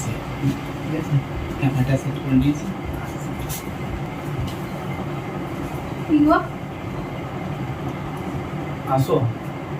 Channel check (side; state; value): both; identical; correlation 1.00